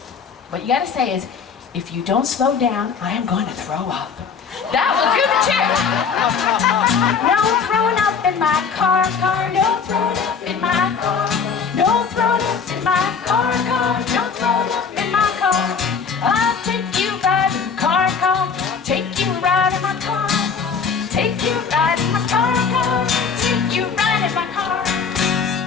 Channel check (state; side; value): quieter; right; 6.0 dB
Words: what you got to say is, if you don't slow down, I am going to throw up. That will do the trick. No throwing up in my car. No throwing up in my car. No throwing up in my car. No throwing up in my car. I'll take you riding car. Take you riding my car. Take you riding my car. Take you riding my car.